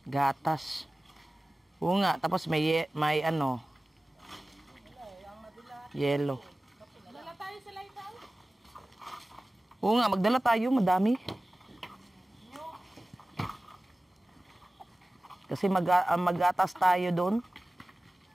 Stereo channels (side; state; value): both; normal; correlation 0.96